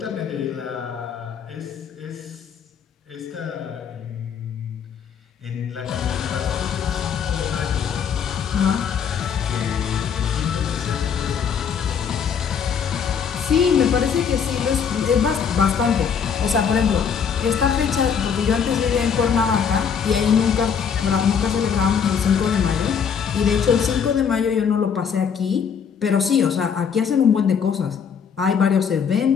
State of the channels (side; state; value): right; quieter; 7.0 dB